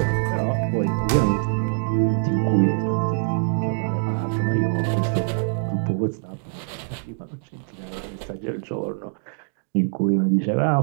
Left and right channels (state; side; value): silent; left; digital silence